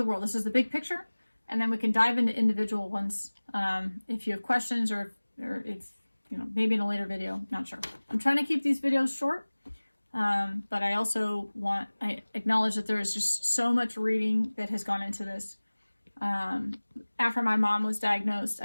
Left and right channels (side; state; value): both; inverted; correlation -1.00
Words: world. This is the big picture. And then we can dive into individual ones if you have questions or if, you know, maybe in a later video, not sure. I'm trying to keep these videos short, but I also I acknowledge that there is just so much reading that has gone into this. After my mom was diagnosed,